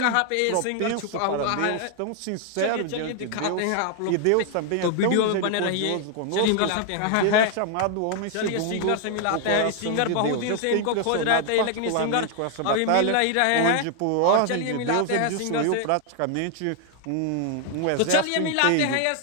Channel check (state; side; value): different; both; correlation 0.00